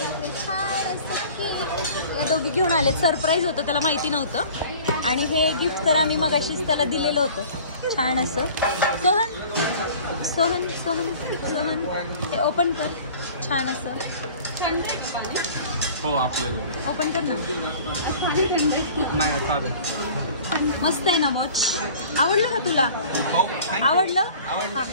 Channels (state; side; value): inverted; both; correlation -0.45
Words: छान असं या दोघी घेऊन आले. सरप्राईज होतं त्याला माहिती नव्हतं. आणि हे गिफ्ट तर आम्ही मगाशीच त्याला दिलेलं होतं छान असं. सोहन हे ओपन कर छान असं. हो आपल्याला ओपन कर ना. नाही साधं मस्त आहे ना वॉच. आवडलं का तुला? आवडलं.